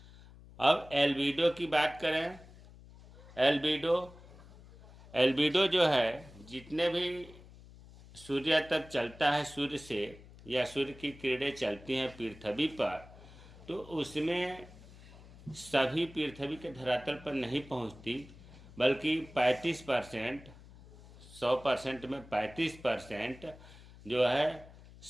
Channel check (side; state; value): left; noise; hum, 20 dB below the sound